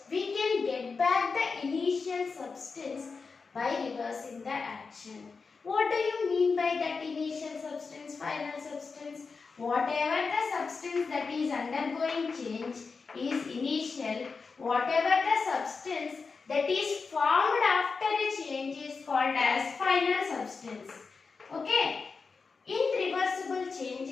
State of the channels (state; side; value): quieter; right; 4.7 dB